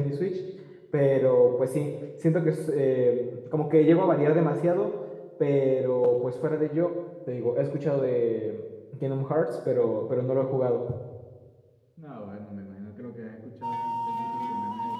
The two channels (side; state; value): both; identical; correlation 1.00